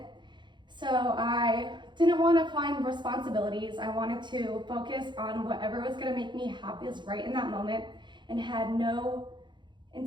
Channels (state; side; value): late; left; 0.22 ms